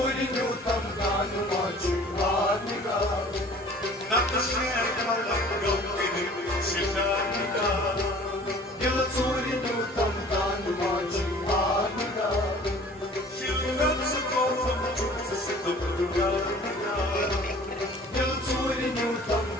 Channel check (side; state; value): both; normal; correlation 0.48